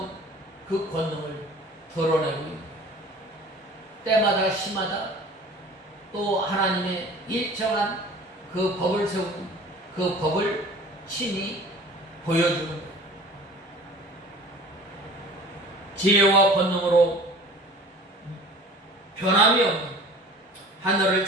그 권능을 드러내고 있는 때마다 시마다 또 하나님의 일정한 그 법을 세우고 그 법을 친히 보여주는 것. 지혜와 권능으로 변함이 없는 하늘을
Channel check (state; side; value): normal; both; correlation 0.44